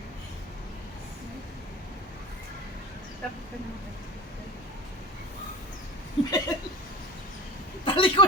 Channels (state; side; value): normal; both; correlation 0.32